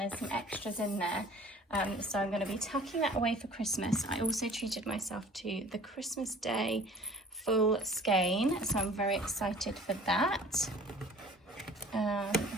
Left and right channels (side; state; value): both; normal; correlation 0.48